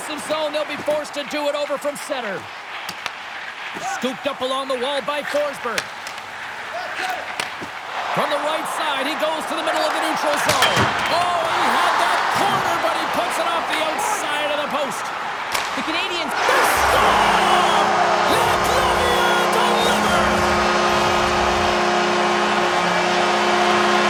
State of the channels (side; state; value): both; identical; correlation 1.00